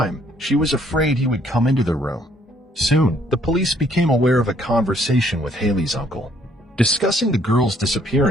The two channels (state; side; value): normal; both; correlation 0.65